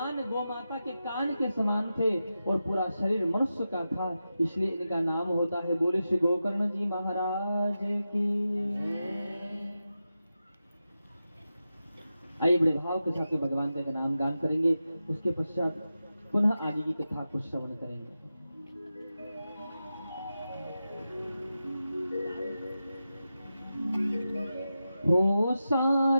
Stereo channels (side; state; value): both; inverted; correlation -0.91